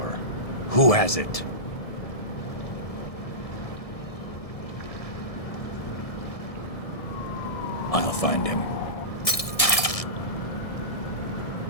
Who has it? I'll find him.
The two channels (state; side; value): late; right; 1.6 ms